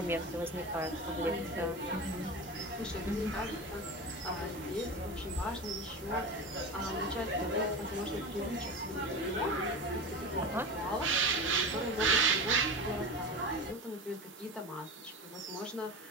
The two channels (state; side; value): normal; both; correlation 0.28